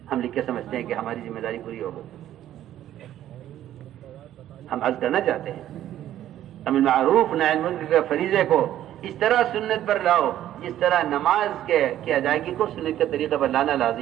ہم لکھ کے سمجھتے ہیں کہ ہماری ذمہ داری پوری ہو گئی۔ ہم عرض کرنا چاہتے ہیں امر معروف نہی عن المنکر کے فریضے کو اس طرح سنت پر لاؤ جس طرح نماز کے ادائیگی کو سنت کے طریقے پر لانا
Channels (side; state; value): left; quieter; 12.3 dB